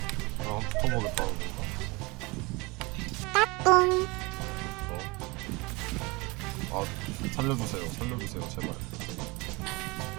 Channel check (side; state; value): left; quieter; 25.5 dB